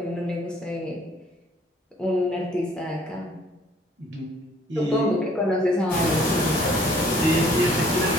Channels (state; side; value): normal; both; correlation 0.58